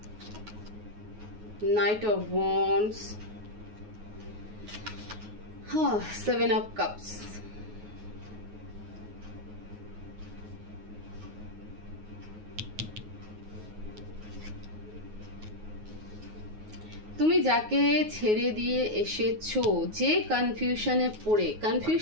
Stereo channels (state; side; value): late; left; 9.4 ms